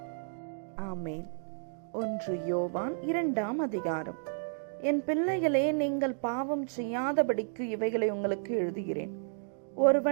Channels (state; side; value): silent; left; digital silence